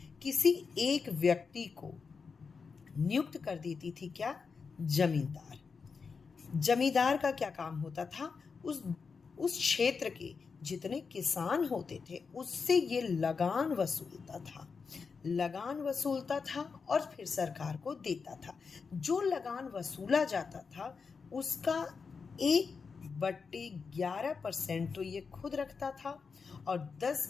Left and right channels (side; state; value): right; quieter; 5.2 dB